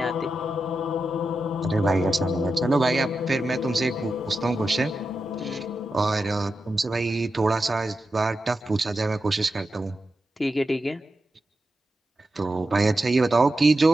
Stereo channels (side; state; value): both; normal; correlation 0.90